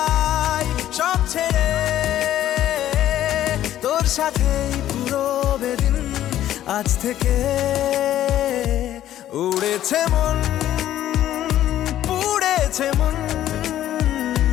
সব ছেড়ে, তোর সাথেই পুরো বেদিন আজ থেকে। উড়েছে মন, পুড়েছে মন,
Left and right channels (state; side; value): quieter; right; 12.4 dB